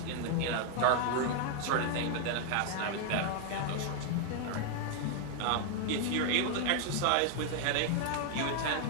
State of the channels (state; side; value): different; both; correlation 0.00